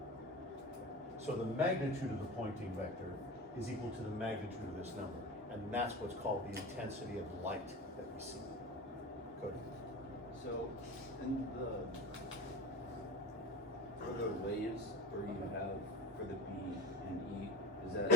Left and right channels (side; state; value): both; normal; correlation 0.31